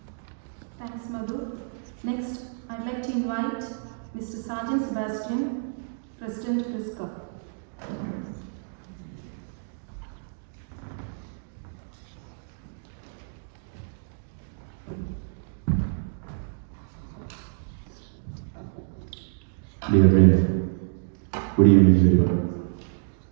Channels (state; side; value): silent; left; digital silence